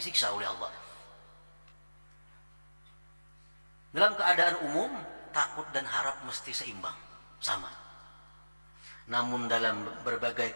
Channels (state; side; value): inverted; both; correlation -1.00